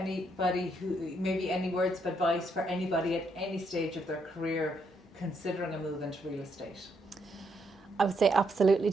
maybe any words of advice for anybody at any stage of their career considering a move into real estate? I would say absolutely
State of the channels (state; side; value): normal; both; correlation 0.76